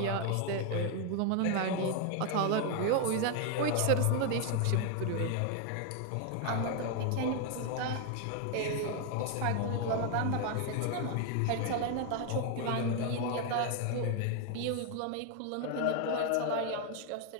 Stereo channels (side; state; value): both; different; correlation 0.01